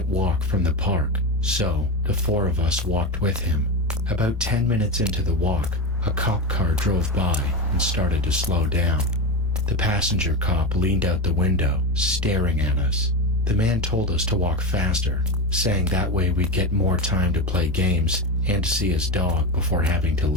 walk from the park, so the 4 of us walked with him. About 10 minutes into the walk, a cop car drove by and started to slow down. The passenger cop leaned out the window, staring at us. The man told us to walk faster, saying that way we'd get more time to play games and to see his dog before having to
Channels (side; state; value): left; noise; rumble, 19 dB below the sound